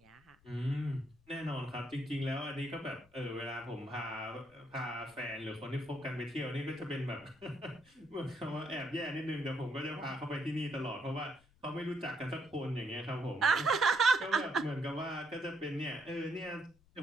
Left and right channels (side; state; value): left; noise; rumble, 29 dB below the sound